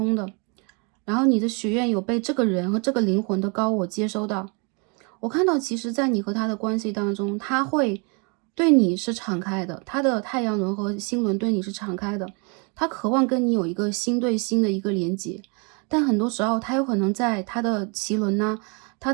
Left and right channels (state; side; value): quieter; left; 34.0 dB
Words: 的，然后你的许愿有被这个人和这个灵魂的高我接收到。我看到其实在你和他的关系当中，他会对你是敞开的，他的太阳轮和星轮对你是敞开的，他渴望跟你有一个心对心的一个连接，但很多时候他有可能在他的脐轮他